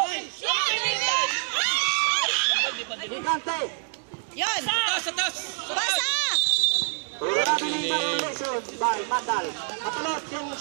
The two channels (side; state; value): left; silent; 57 dB below the other